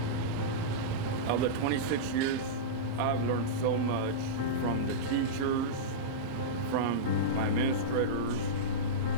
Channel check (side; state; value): left; late; 16 ms